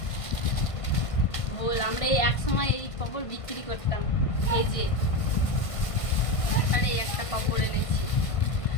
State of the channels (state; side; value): late; right; 1.5 ms